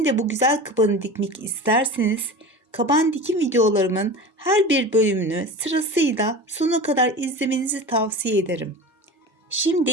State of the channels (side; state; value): both; normal; correlation 0.32